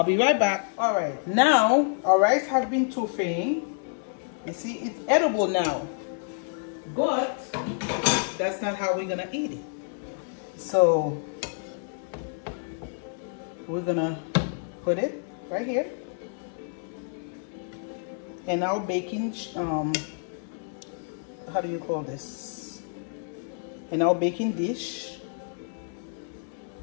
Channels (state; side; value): silent; right; digital silence